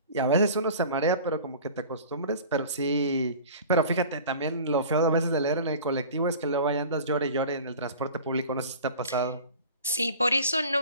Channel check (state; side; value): inverted; both; correlation -0.41